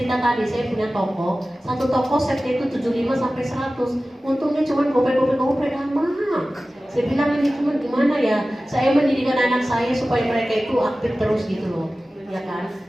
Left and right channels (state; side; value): normal; both; correlation 0.96